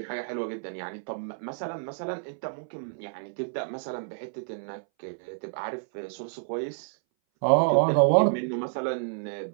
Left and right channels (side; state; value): left; silent; 58 dB below the other